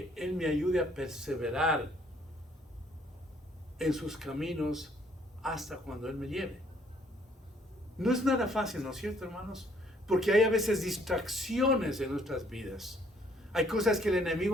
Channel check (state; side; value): normal; both; correlation 0.64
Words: Él me ayude a perseverar en sus caminos hasta cuando Él me lleve. No es nada fácil, ¿no es cierto, hermanos? Porque hay a veces distracciones en nuestras vidas. Hay cosas que el